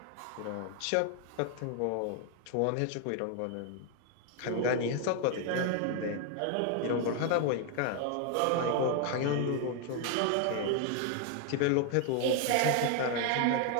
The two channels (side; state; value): both; different; correlation 0.00